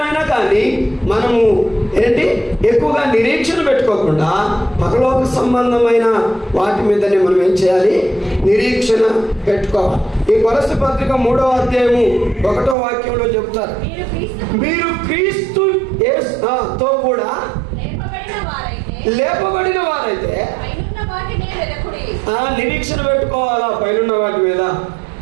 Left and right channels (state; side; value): drops out; left; at 12.8 s